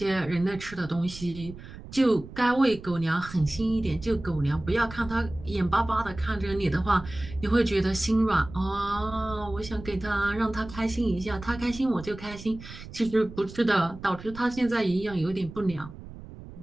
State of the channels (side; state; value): right; noise; rumble, 15 dB below the sound